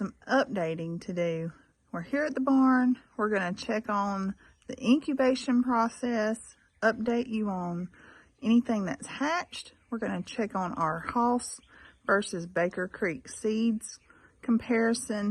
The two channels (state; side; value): identical; both; correlation 1.00